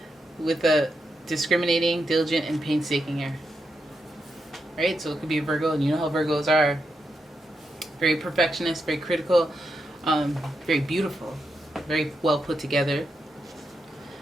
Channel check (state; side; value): normal; both; correlation 0.85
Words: With a discriminating, diligent, and painstaking air. Right? So it could be a Virgo, and you know how Virgos are. Very perfectionist, very critical, very beautiful, very well put together.